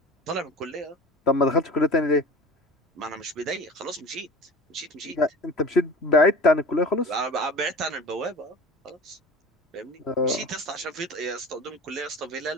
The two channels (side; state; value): both; normal; correlation 0.38